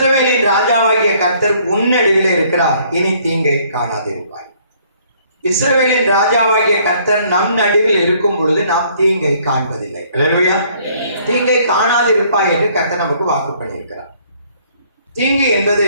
ராஜாவாகிய கர்த்தர் உன் நடுவில் இருக்கிறார், இனி தீங்கை காணாதிருப்பாய். இஸ்ரவேலின் ராஜாவாகிய கர்த்தர் நம் நடுவில் இருக்கும் பொழுது நாம் தீங்கை காண்பதில்லை. அல்லேலூயா. தீங்கை காணாதிருப்பாய் என்று கர்த்தர் நமக்கு வாக்கு பண்ணியிருக்கிறார். தீங்கு என்பது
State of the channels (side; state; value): both; inverted; correlation -0.62